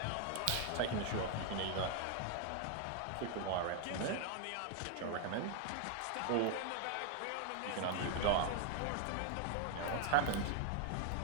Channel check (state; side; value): different; both; correlation 0.00